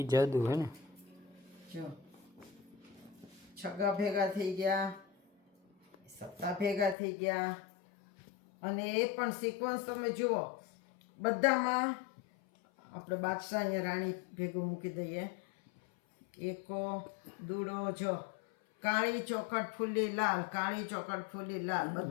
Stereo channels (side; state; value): right; drops out; at 7.0 s